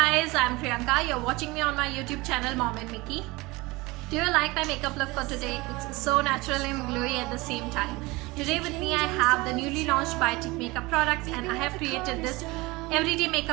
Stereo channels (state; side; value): quieter; left; 22.6 dB